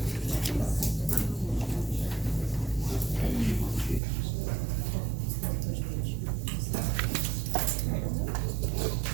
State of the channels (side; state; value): left; drops out; at 4.0 s